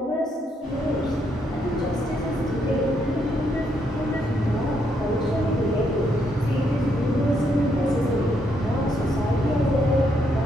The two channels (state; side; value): normal; both; correlation 0.76